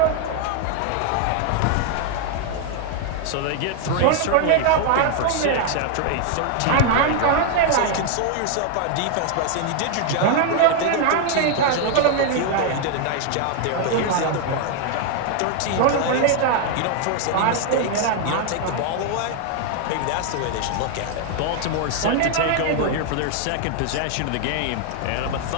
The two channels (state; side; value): different; both; correlation 0.00